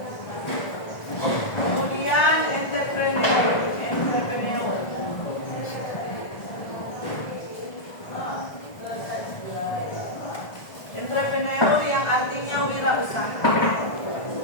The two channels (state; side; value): late; right; 1.5 ms